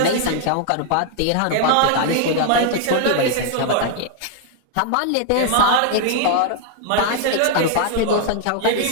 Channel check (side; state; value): both; different; correlation 0.00